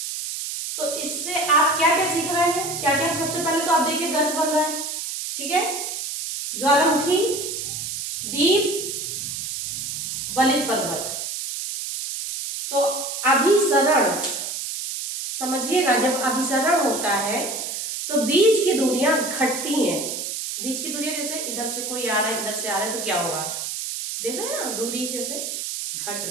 तो इससे आप क्या क्या सीख रहे हैं, क्या क्या? सबसे पहले तो आप देखिए गर्त बन रहा है, ठीक है। ज्वालामुखी, दीप, वलित पर्वत। तो अभिसरण समझिएगा, जब अभिसरण होता है तो बीच की दूरियां घटती हैं। बीच की दूरियां जैसे इधर से कोई आ रहा है, इधर से आ रहा है, तो क्या होगा, देख रहे हैं ना, दूरी जैसे घट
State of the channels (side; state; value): right; noise; hiss, 5 dB below the sound